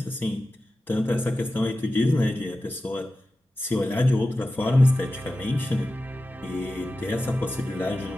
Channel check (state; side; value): normal; both; correlation 0.94